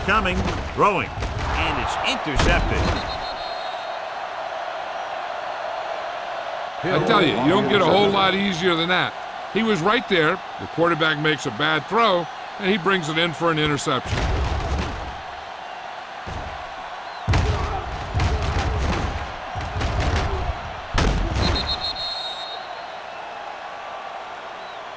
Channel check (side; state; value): both; identical; correlation 1.00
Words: throwing, and it's intercepted. I tell you, you don't get a whole lot easier than that. He was right there. The quarterback makes a bad throw, and he brings it in for an interception.